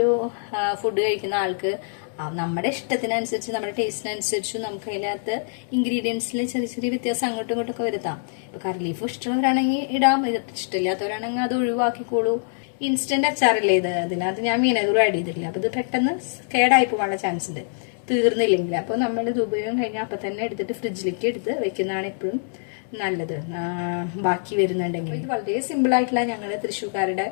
ഫുഡ് കഴിക്കുന്ന ആൾക്ക് നമ്മുടെ ഇഷ്ടത്തിനനുസരിച്ച് നമ്മുടെ ടേസ്റ്റിനനുസരിച്ച് നമുക്ക് അതിനകത്ത് ഇൻഗ്രീഡിയൻസിൽ ചെറിയ ചെറിയ വ്യത്യാസം അങ്ങോട്ടും ഇങ്ങോട്ടും ഒക്കെ വരുത്താം. ഇപ്പൊ കറി ലീഫ് ഇഷ്ടമുള്ളവരാണെങ്കിൽ ഇടാം, ഇഷ്ടമില്ലാത്തവരാണെങ്കിൽ അത് ഒഴിവാക്കിക്കോളൂ. ഇൻസ്റ്റന്റ് അച്ചാറല്ലേ ഇത്, അതിനകത്ത് ഞാൻ വിനെഗർ ആഡ് ചെയ്തിട്ടില്ല. അപ്പൊ ഇത് പെട്ടെന്ന് കേടായി പോകാനുള്ള ചാൻസ് ഉണ്ട് തീർന്നില്ലെങ്കിൽ. അപ്പൊ നമ്മൾ ഇത് ഉപയോഗം കഴിഞ്ഞാൽ അപ്പൊ തന്നെ എടുത്തിട്ട് ഫ്രിഡ്ജിലേക്ക് എടുത്ത് വെക്കുന്നതാണ് എപ്പോഴും നല്ലത്, ബാക്കി വരുന്നുണ്ടെങ്കിൽ. ഇത് വളരെ സിമ്പിൾ ആയിട്ടുള്ള ഞങ്ങളുടെ തൃശ്ശൂർക്കാരുടെ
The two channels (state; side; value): silent; right; digital silence